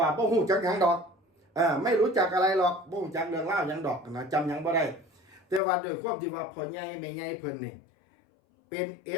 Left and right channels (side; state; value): right; drops out; at 5.6 s